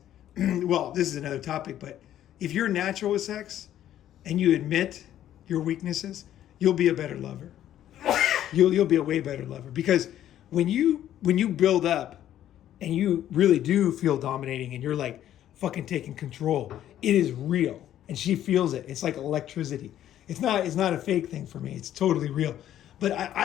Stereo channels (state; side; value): quieter; right; 11.7 dB